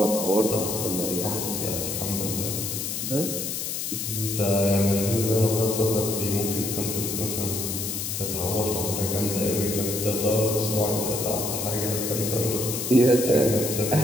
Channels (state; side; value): noise; left; hiss, 3 dB below the sound